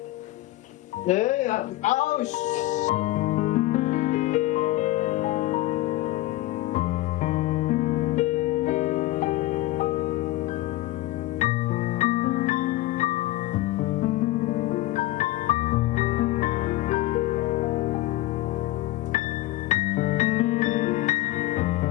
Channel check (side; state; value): right; quieter; 16.8 dB